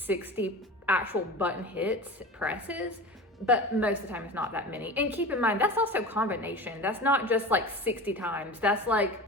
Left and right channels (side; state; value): both; normal; correlation 0.32